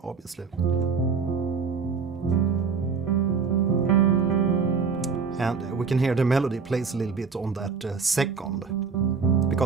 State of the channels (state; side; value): quieter; left; 5.5 dB